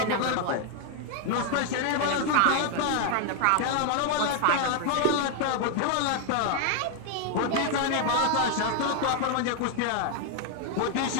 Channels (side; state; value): both; different; correlation 0.01